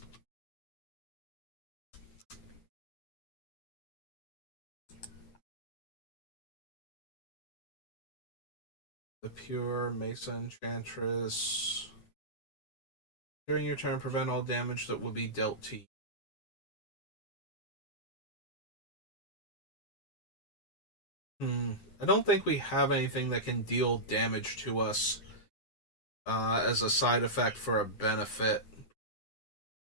The Pure, Mesa Enchantress. During your turn, prevent all damage that would be dealt to you. I don't think we have anything that can deal damage to us as a side effect for a benefit.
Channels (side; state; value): right; late; 9.8 ms